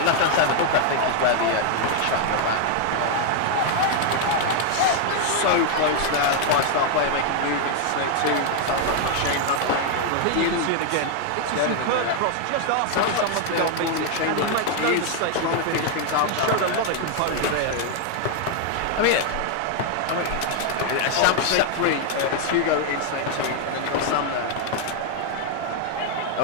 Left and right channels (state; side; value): different; both; correlation 0.00